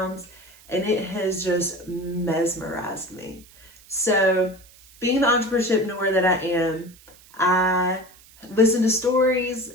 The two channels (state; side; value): noise; right; hiss, 25 dB below the sound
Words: and it has just mesmerized me. So being the entrepreneurship that I am, I listen to stories